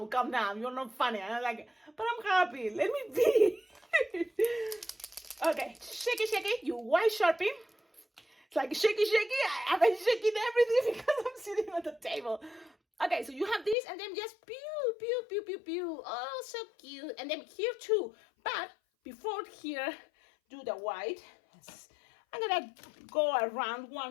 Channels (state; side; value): drops out; right; at 13.8 s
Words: calm down, you're not funny. And I'm like, but I'm happy, let me be. Okay, shaky, you white Sharpie. It's like shaky. I've been shaking everything because I'm sitting on the table. Okay, so you have this, and then just pew. Oh, so cute. And then here too. But before here, do the white. I'm gonna go around